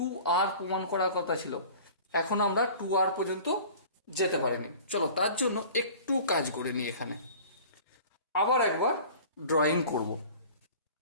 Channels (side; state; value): both; inverted; correlation -0.43